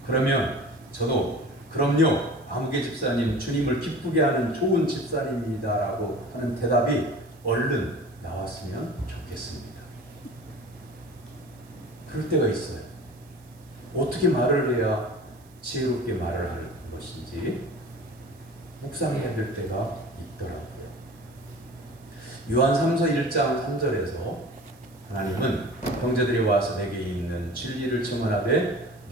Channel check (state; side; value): noise; right; hiss, 29 dB below the sound